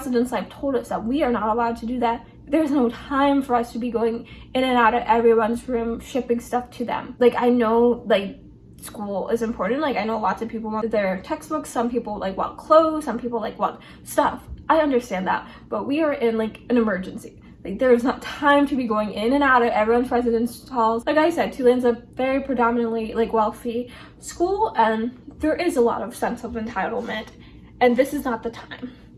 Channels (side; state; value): both; identical; correlation 1.00